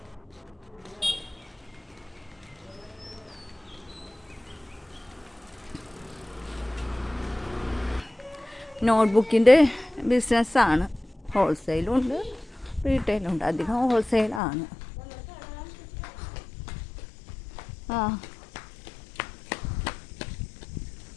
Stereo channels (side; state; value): right; drops out; at 14.4 s